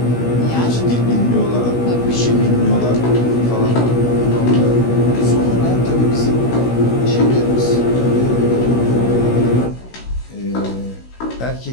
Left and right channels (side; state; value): right; late; 16 ms